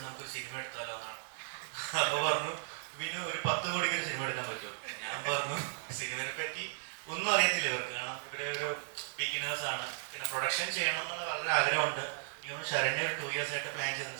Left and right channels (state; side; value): silent; left; digital silence